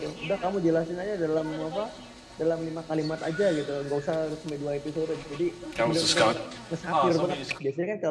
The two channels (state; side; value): identical; both; correlation 1.00